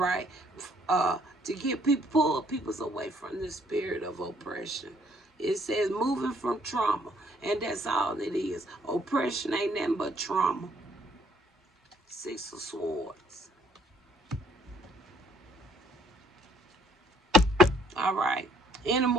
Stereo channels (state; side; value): normal; both; correlation 0.65